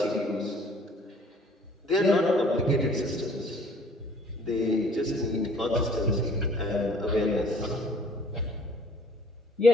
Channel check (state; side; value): normal; both; correlation 0.55